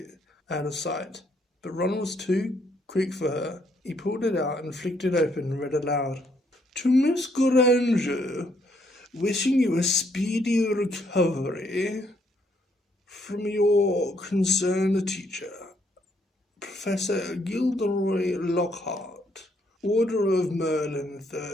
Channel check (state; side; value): normal; both; correlation 0.71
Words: out of sight. But Ron was too quick for her. He pulled it out and flicked it open and read aloud. "To Miss Granger, wishing you a speedy recovery from your concerned teacher, Professor Gilderoy Lockhart, Order of Merlin